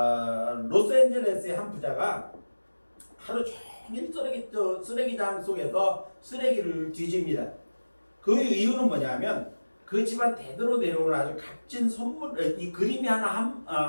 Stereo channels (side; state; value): both; inverted; correlation -1.00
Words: 로스앤젤레스의 한 부자가 하루 종일 쓰레기장 속에서 쓰레기를 뒤집니다. 그 이유는 뭐냐면 그 집안 대대로 내려오는 아주 값진 선물, 이 그림이